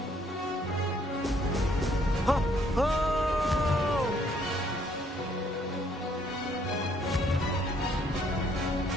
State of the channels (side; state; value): both; normal; correlation 0.66